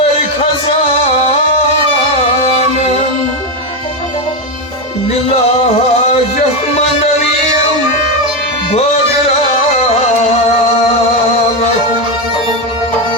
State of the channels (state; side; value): normal; both; correlation 0.10